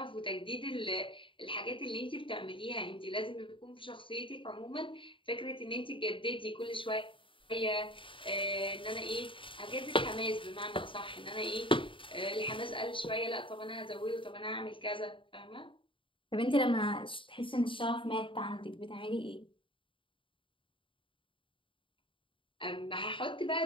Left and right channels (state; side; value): late; right; 0.25 ms